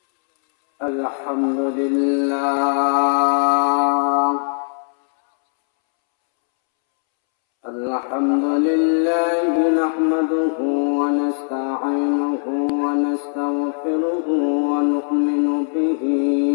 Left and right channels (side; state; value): right; silent; 66 dB below the other